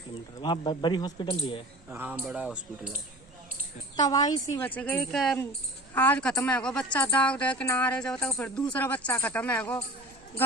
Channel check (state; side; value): normal; both; correlation 0.40